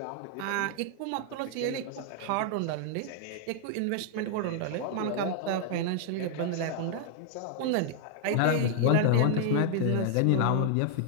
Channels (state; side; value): different; both; correlation 0.00